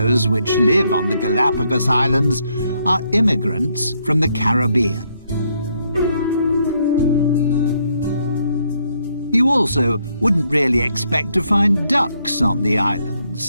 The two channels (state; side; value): inverted; both; correlation -0.73